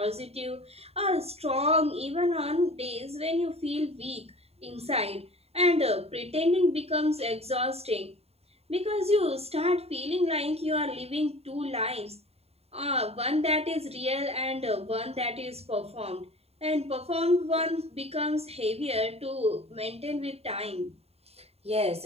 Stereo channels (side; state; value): left; late; 0.29 ms